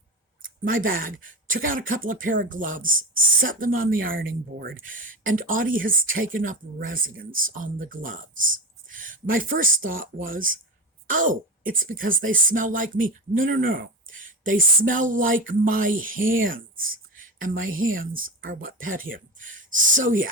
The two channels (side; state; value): both; normal; correlation 0.21